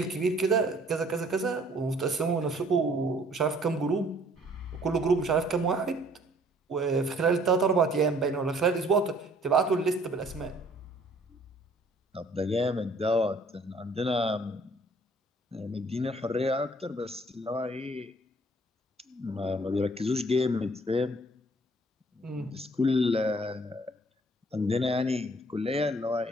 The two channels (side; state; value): both; normal; correlation 0.58